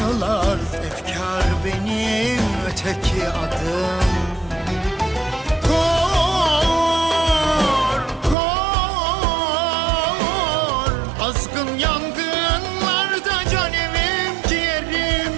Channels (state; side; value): drops out; left; at 8.3 s